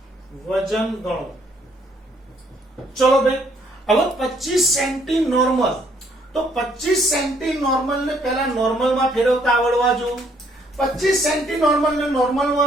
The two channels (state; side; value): normal; both; correlation 0.66